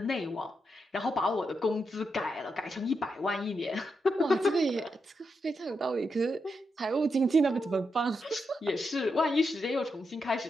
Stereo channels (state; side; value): normal; both; correlation 0.84